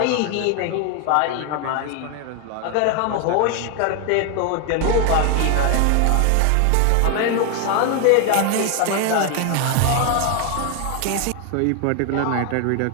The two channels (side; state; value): both; different; correlation 0.01